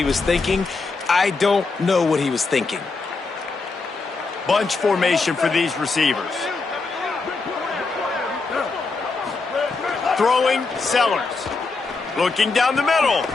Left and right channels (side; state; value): right; quieter; 4.1 dB